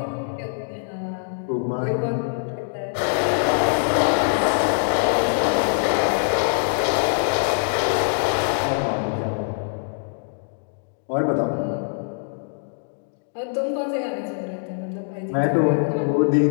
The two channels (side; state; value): right; silent; digital silence